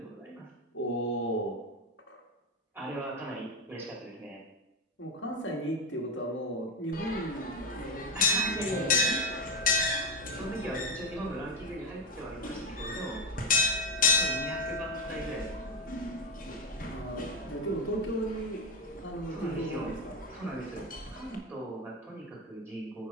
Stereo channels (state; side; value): normal; both; correlation 0.10